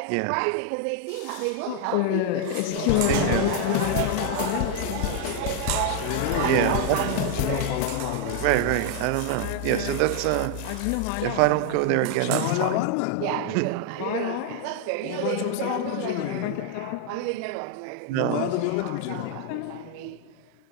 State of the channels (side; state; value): both; different; correlation 0.00